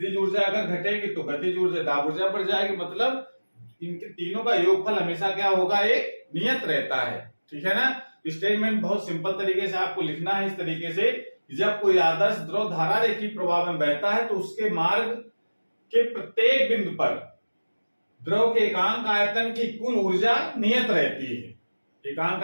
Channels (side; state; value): both; inverted; correlation -1.00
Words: ऊर्जा अगर घटेगी तो गतिज ऊर्जा, दाब ऊर्जा बढ़ जाएगी। मतलब इनके तीनों का योगफल हमेशा क्या होगा? एक नियत रहता है। ठीक है ना? स्टेटमेंट बहुत सिंपल तरीके से आपको लिखना है इस तरीके से, जब कोई आदर्श द्रव धारा रेखीय प्रवाह में बहता है तो उसके मार्ग के प्रत्येक बिंदु पर द्रव के एकांक आयतन की कुल ऊर्जा नियत रहती है। एकांक